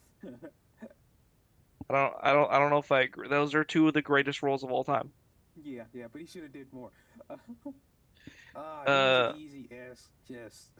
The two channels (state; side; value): identical; both; correlation 1.00